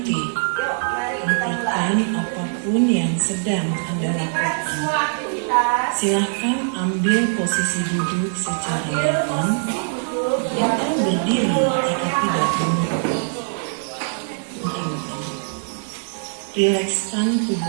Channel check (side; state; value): left; silent; 55 dB below the other